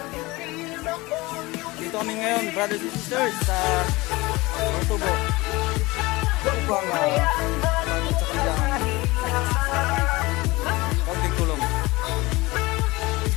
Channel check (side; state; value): right; quieter; 21.8 dB